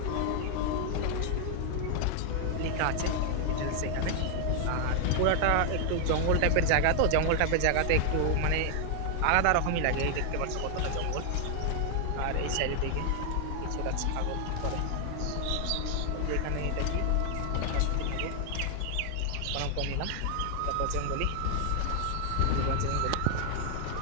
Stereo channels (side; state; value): both; different; correlation 0.00